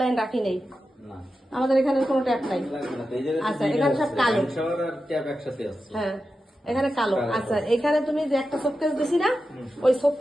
রাখি নেই, আমাদের এখানে কোনো ট্যাপ নাই। আচ্ছা এখানে সব কালো, হ্যাঁ এখানে কালো। আচ্ছা এখানে তুমি যে একটা শোকেস দিছি না, ওই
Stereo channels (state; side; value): normal; both; correlation 0.91